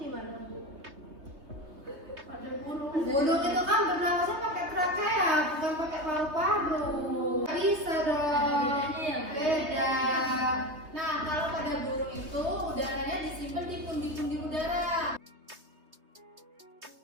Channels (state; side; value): late; left; 3.2 ms